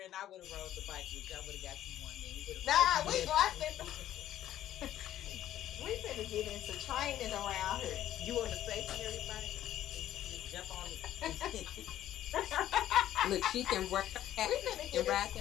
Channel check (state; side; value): quieter; right; 12.4 dB